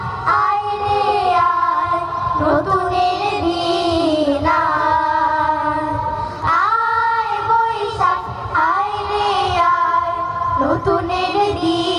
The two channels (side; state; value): both; identical; correlation 1.00